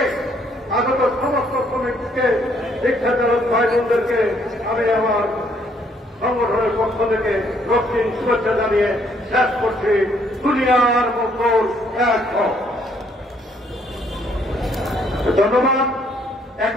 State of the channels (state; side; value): normal; both; correlation 0.67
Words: আগত সমস্ত শ্রমিককে, শিক্ষাচালক ভাই বোনদেরকে আমি আমার সংগঠনের পক্ষ থেকে রক্তিম শুভেচ্ছা জানিয়ে শেষ করছি। দুনিয়ার মঙ্গল এক হোক। ধন্যবাদ।